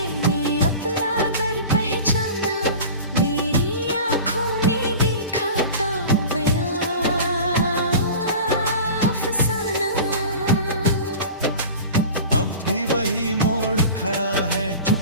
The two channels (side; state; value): both; inverted; correlation -0.36